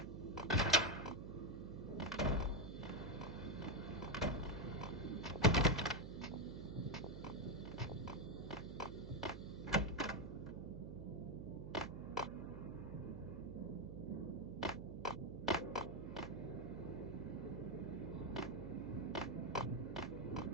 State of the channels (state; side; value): noise; right; hum, 9 dB below the sound